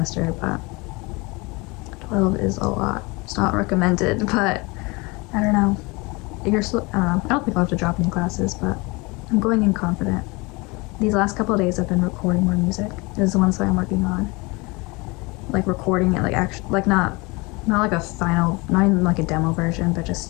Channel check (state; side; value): quieter; right; 26.1 dB